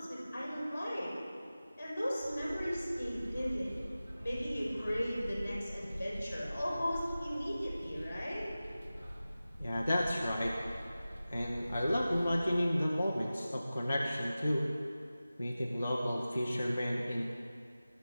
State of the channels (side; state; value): both; inverted; correlation -0.96